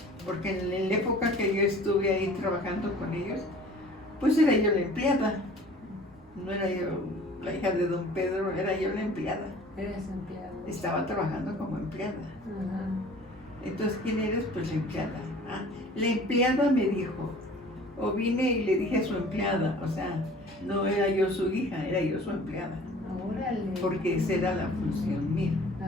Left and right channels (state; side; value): normal; both; correlation 0.48